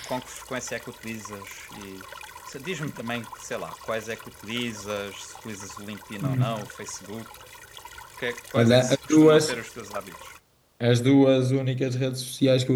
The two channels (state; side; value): identical; both; correlation 1.00